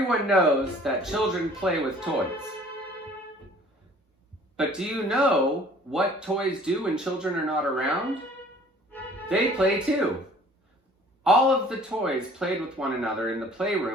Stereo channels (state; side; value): normal; both; correlation 0.52